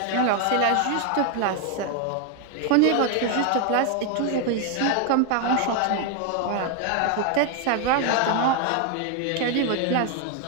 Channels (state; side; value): different; both; correlation 0.01